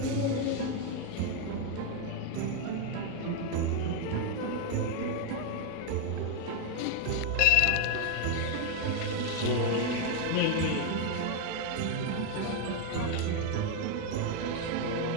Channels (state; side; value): different; both; correlation 0.01